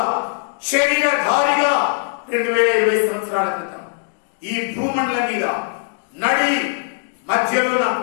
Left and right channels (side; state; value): right; silent; 65 dB below the other